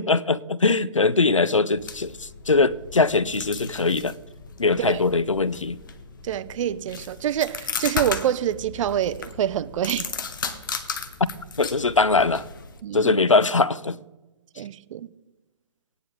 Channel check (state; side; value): normal; both; correlation -0.18